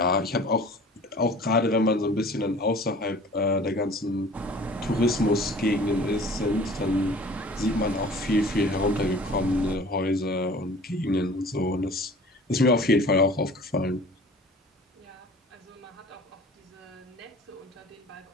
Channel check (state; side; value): normal; both; correlation 0.46